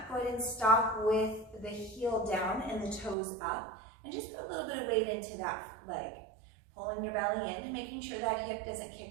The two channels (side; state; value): left; drops out; at 3.2 s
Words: go ahead and stop with the heel down and the toes up, and just put a little bit of weight into that leg. Pulling your belly in and making sure that hip doesn't